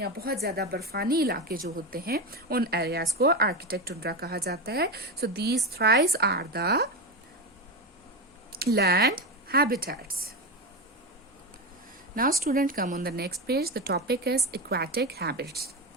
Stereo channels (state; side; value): normal; both; correlation 0.16